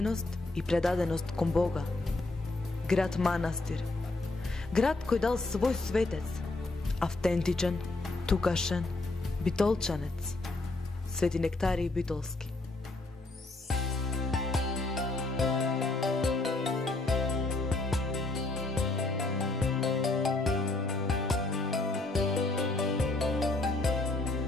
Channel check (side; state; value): right; quieter; 3.1 dB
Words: и предаденост кон Бога. Град манастир. Град кој дал свој светец, автентичен, тукашен, битолчанец, Свети Нектарий Битолски.